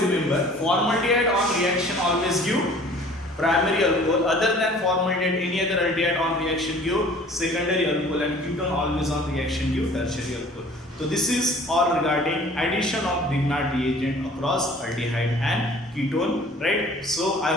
remember, formaldehyde on reaction always give primary alcohol, other than formaldehyde any other aldehyde on reaction give secondary alcohol and ketone always on reaction give tertiary alcohol. So this is all regarding addition of Grignard reagent across aldehyde and ketone, right? So I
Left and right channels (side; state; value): both; normal; correlation 0.50